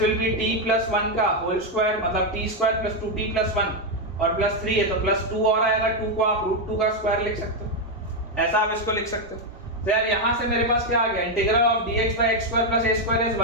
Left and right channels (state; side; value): normal; both; correlation 0.03